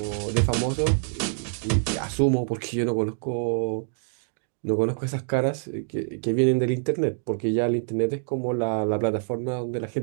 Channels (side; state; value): left; silent; digital silence